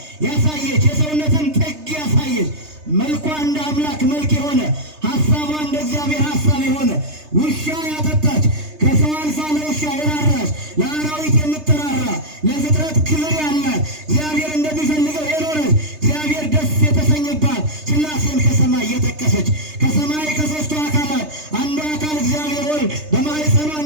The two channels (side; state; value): left; late; 3.3 ms